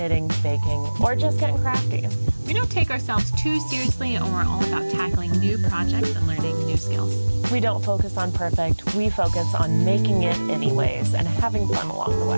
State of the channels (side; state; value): both; inverted; correlation -1.00